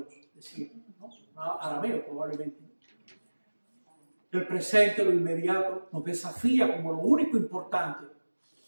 decía, ¿no? Arameo probablemente. El presente, lo inmediato, nos desafía como lo único importante.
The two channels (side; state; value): both; inverted; correlation -1.00